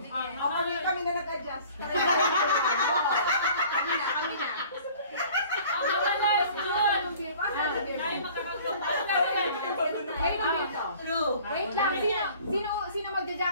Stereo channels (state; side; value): inverted; both; correlation -0.49